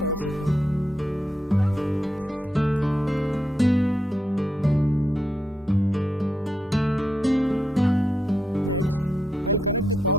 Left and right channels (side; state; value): both; normal; correlation 0.83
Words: supply. Next, I'll connect the